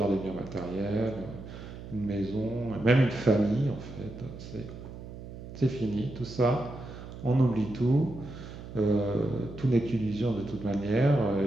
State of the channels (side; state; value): right; noise; hum, 12 dB below the sound